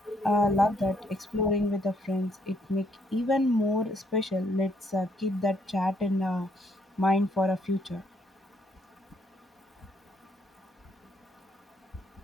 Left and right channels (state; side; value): normal; both; correlation 0.70